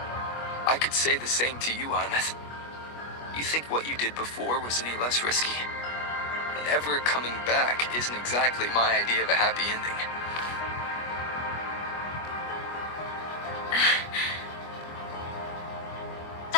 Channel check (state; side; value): late; right; 25 ms